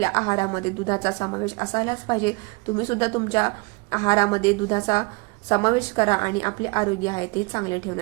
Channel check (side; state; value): left; quieter; 27.7 dB